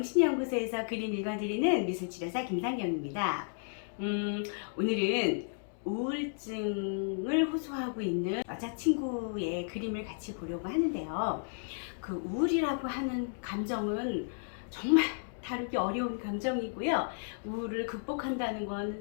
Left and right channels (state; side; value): silent; right; digital silence